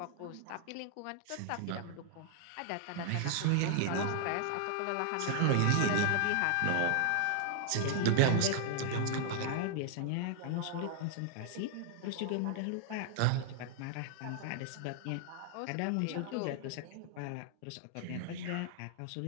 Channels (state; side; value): different; both; correlation 0.00